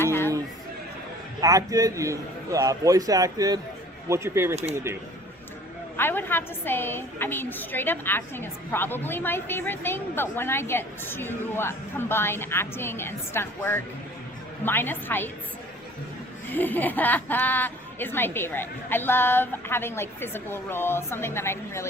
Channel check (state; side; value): normal; both; correlation 0.50